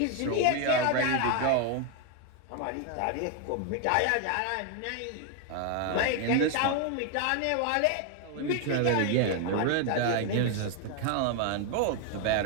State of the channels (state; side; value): different; both; correlation 0.01